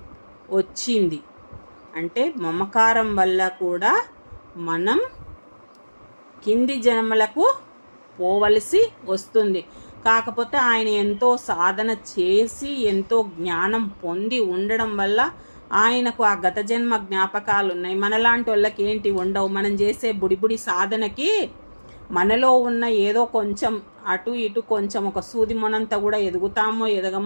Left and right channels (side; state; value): both; inverted; correlation -1.00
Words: వచ్చింది. అంటే మమకారం వల్ల కూడా మనం కింది జన్మలకు పోవలసి వస్తుంది. కాకపోతే ఆయన ఎంతో సాధన చేసి ఎంతో జ్ఞానం పొంది ఉండడం వల్ల ఆయనకు ఆ గత జన్మ జ్ఞాపకాలు ఉన్నాయి. మనలాంటి వాళ్ళకి ఏంటి ఉండవు. మనం చేసే బుడిబుడి సాధనకి మనలో ఉన్న ఏదో కొంచెం అటు ఇటు కొంచెం ఒక సూది మొనంతా కూడా ఎదుగుతామో